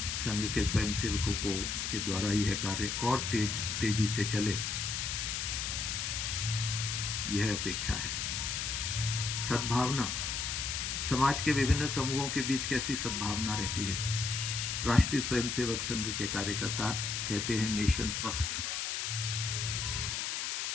संघ के स्वयंसेवकों को के द्वारा यह कार्य और तेजी से चले, यह अपेक्षा है। सद्भावना, समाज के विभिन्न समूहों के बीच कैसी सद्भावना रहती है। राष्ट्रीय स्वयंसेवक संघ के कार्यकर्ता कहते हैं नेशन फर्स्ट,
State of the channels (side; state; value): left; noise; hiss, 1 dB below the sound